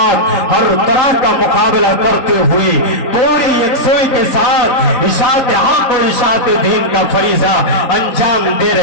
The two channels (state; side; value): late; right; 3.8 ms